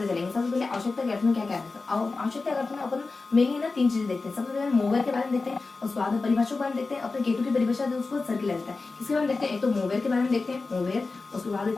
चलेंगे। सबसे पहले आवश्यकता के अर्थ में क्या क्या है। आवश्यकता के अर्थ में अपन मेनली ना 3 चीजें देखते हैं। सबसे पहले मोवेर के बारे में देखते हैं, और स्वाद परिभाषा के बारे में देखते हैं। अपने केटू की परिभाषा है उसको सर्किल आ जाता है। किसके बारे में देखते हैं, एक तो मोवेर के बारे में देखते हैं, मोवेर। उसके बाद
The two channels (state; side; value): quieter; right; 3.8 dB